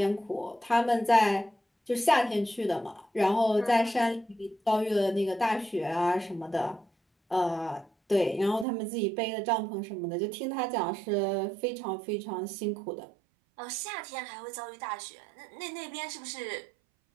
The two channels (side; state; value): left; drops out; at 8.7 s